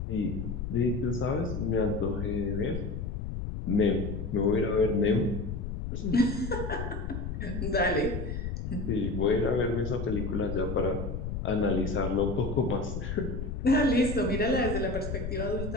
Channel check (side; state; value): left; noise; rumble, 4 dB below the sound